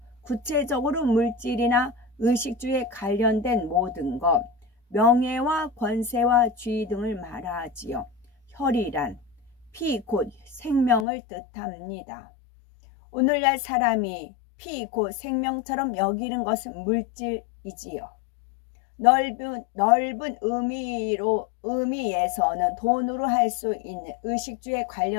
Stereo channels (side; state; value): right; drops out; at 11.1 s